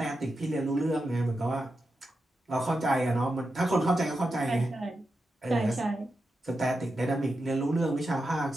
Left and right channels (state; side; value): normal; both; correlation 0.89